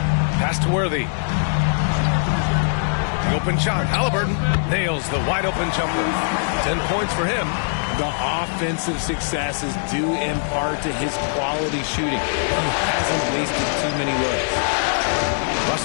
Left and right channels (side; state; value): right; silent; 65 dB below the other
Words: Pass to Worthy. The open shot. Halliburton nails the wide open jumper. 10 points for him. The offensive success is due in part to his quality shooting. He hasn't wasted too many looks.